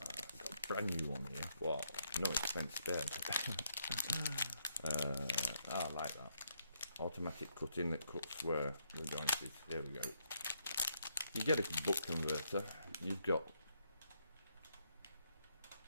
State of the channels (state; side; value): inverted; both; correlation -0.76